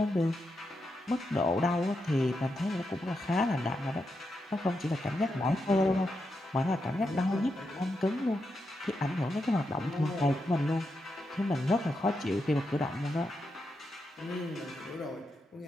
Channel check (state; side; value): normal; both; correlation 0.85